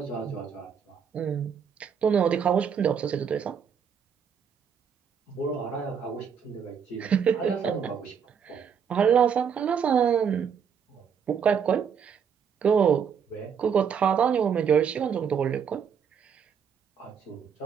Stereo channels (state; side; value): quieter; left; 7.2 dB